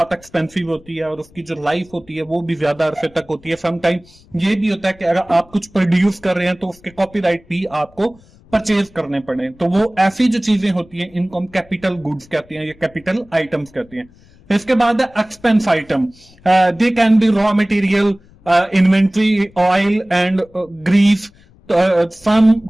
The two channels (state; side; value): noise; left; rumble, 27 dB below the sound